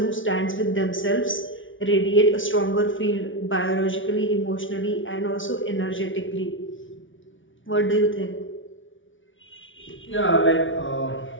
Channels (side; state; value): right; late; 0.56 ms